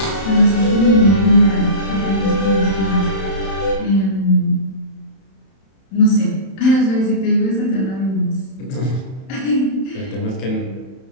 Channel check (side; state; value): right; late; 31 ms